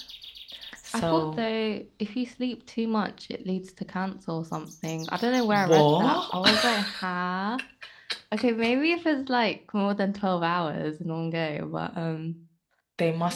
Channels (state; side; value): identical; both; correlation 1.00